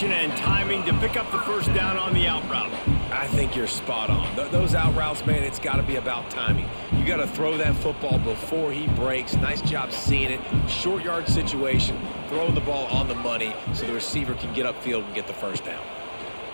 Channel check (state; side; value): inverted; both; correlation -1.00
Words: and timing to pick up the first down on the out route. I think you're spot on. Those out routes, man, it's got to be about timing. You got to throw that football before he breaks. Nice job seeing it. Short yard situation, throwing the ball on the money so the receiver can get upfield and get the first down.